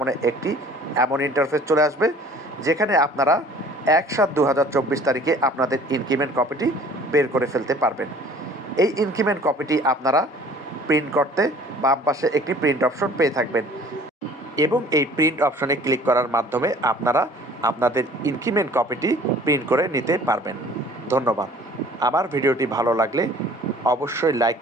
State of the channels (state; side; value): normal; both; correlation 0.51